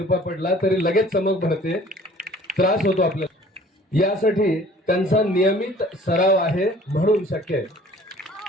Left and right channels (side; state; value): both; normal; correlation 0.51